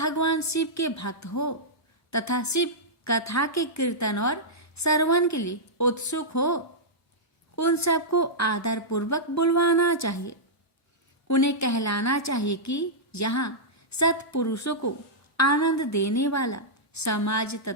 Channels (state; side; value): normal; both; correlation -0.11